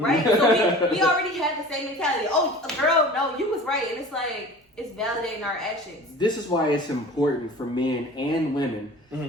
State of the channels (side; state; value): both; normal; correlation 0.41